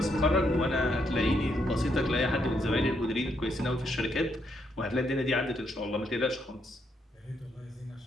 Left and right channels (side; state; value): both; normal; correlation 0.76